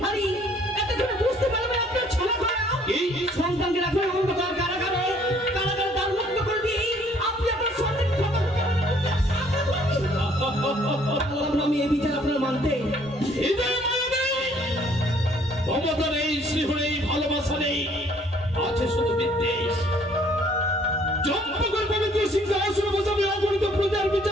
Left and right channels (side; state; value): both; normal; correlation 0.61